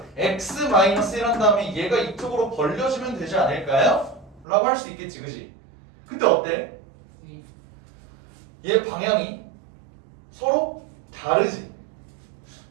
x 마이너스 1 한 다음에 얘가 이쪽으로 벌려지면 되지 않을까요? 라고 할 수 있겠지, 그지? 근데 어때? 얘 방향이 서로 다르지?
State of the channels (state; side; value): drops out; left; at 4.5 s